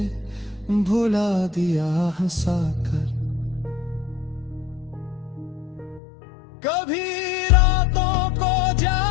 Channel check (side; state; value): right; drops out; at 6.0 s